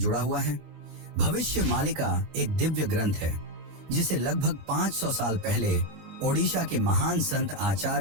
हुआ है। भविष्य मालिका एक दिव्य ग्रंथ है जिसे लगभग 500 साल पहले ओडिशा के महान संत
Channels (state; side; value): late; left; 22 ms